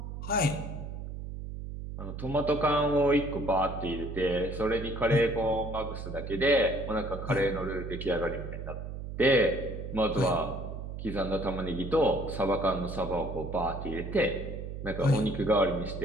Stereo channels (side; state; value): right; noise; hum, 8 dB below the sound